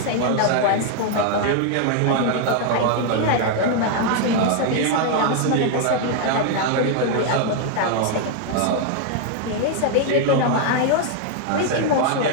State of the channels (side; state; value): both; different; correlation 0.00